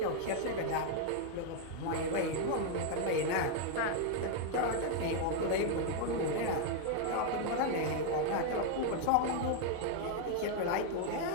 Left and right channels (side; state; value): both; different; correlation 0.00